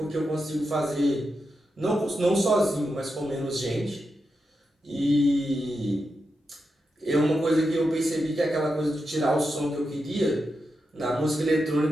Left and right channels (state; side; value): normal; both; correlation 0.87